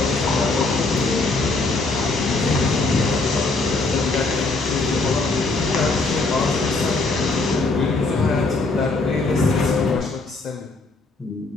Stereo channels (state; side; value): quieter; right; 3.4 dB